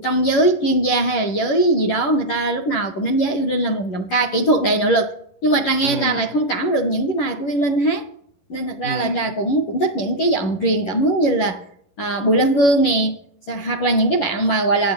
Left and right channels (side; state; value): right; late; 11 ms